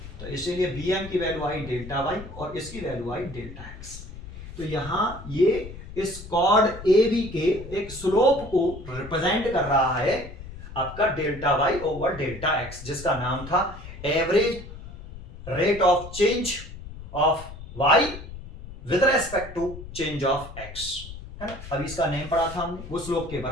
तो इसीलिए बी एम की वैल्यू आई डेल्टा वाई और इसकी वैल्यू आई डेल्टा एक्स। तो यहाँ ये इस कॉर्ड ए बी के एक स्लोप को रिप्रेजेंट कर रहा है आपका delta Y over delta X, जिसका नाम था average rate of change of Y with respect to change of X, है ना। अभी इसका नेम पढ़ा था हमने, वो स्लोप के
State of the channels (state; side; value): noise; left; rumble, 13 dB below the sound